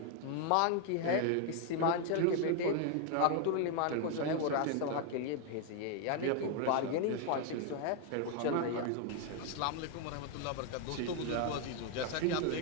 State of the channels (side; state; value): both; different; correlation 0.00